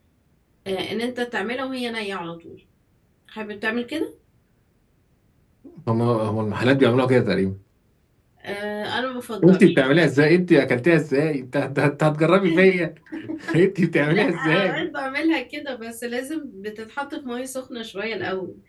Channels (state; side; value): identical; both; correlation 1.00